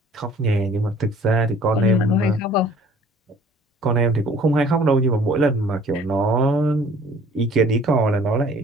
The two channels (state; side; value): normal; both; correlation 0.53